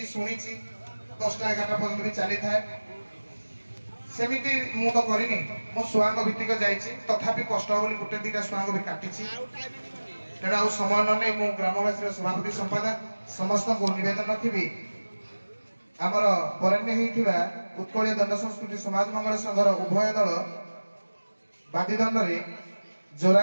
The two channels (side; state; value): both; inverted; correlation -1.00